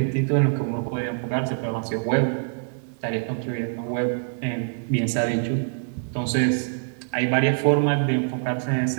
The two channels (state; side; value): silent; left; digital silence